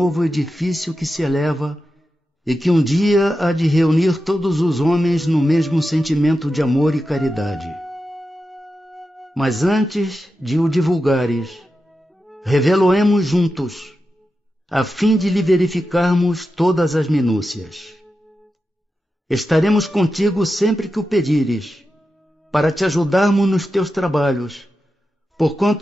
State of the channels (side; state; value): both; normal; correlation 0.90